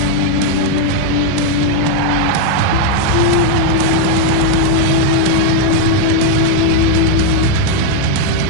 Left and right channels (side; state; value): both; different; correlation 0.00